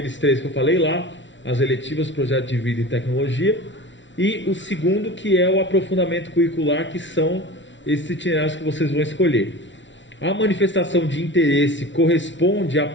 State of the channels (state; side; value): late; right; 0.54 ms